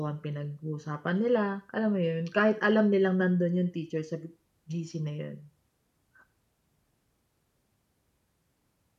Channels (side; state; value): both; identical; correlation 1.00